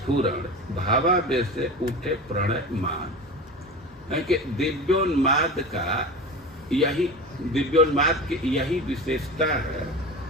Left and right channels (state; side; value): normal; both; correlation 0.30